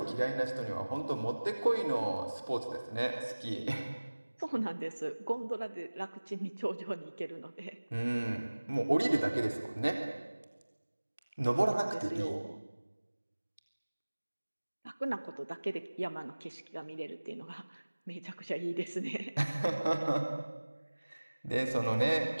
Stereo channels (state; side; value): inverted; both; correlation -1.00